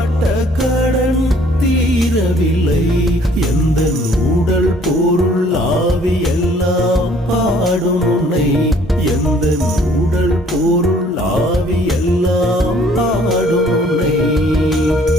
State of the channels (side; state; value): both; normal; correlation 0.59